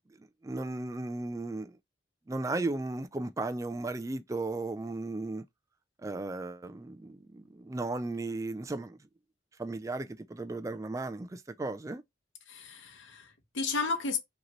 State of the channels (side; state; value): both; normal; correlation 0.59